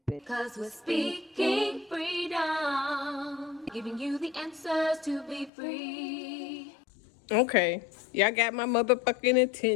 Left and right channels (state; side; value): drops out; right; at 5.5 s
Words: Cause we're speaking freedom, giving you the answers to be free. Okay, y'all got my motherfucking